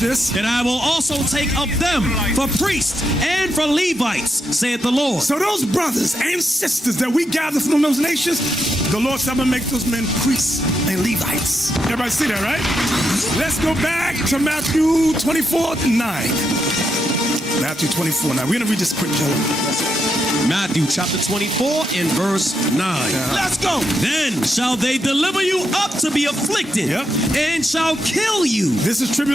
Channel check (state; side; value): normal; both; correlation 0.82